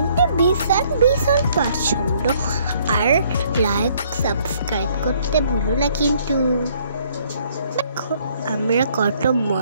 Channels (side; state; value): both; inverted; correlation -0.64